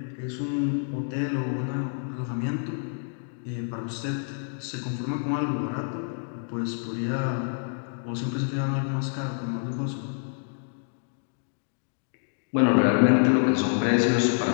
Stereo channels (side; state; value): right; silent; digital silence